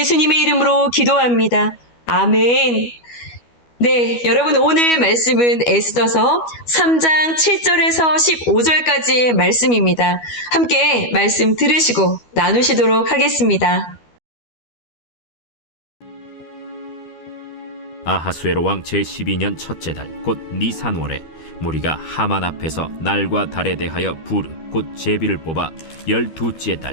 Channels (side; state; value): right; late; 12 ms